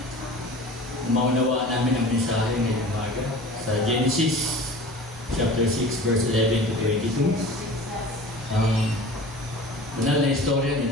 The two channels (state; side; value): normal; both; correlation 0.40